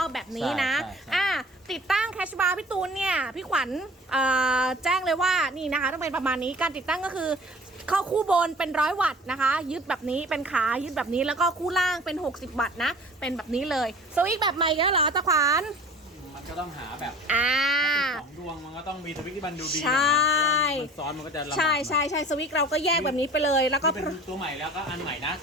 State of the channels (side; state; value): both; normal; correlation 0.45